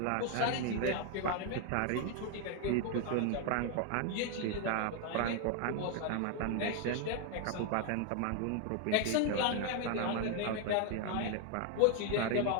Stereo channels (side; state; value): both; different; correlation 0.00